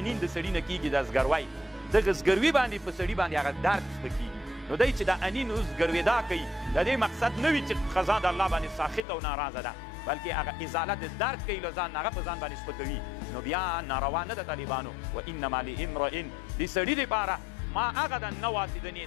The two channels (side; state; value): right; drops out; at 9.0 s